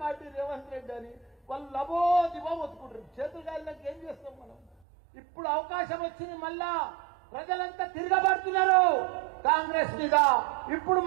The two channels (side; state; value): left; drops out; at 4.7 s